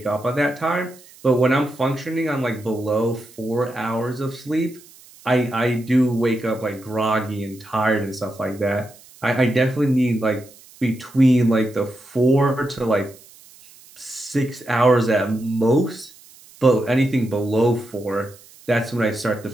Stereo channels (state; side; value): noise; right; hiss, 24 dB below the sound